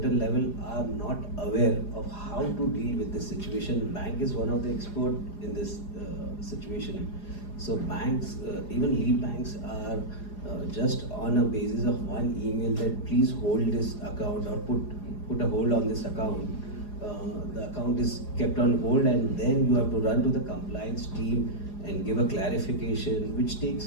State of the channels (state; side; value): late; right; 4.9 ms